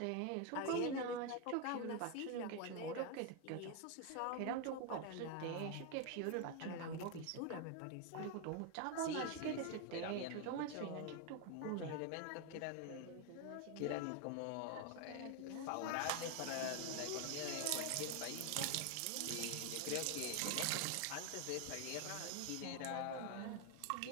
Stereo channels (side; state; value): both; different; correlation 0.01